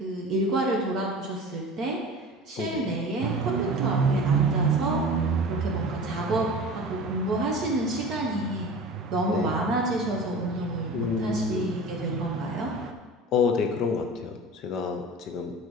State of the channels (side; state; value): both; normal; correlation 0.37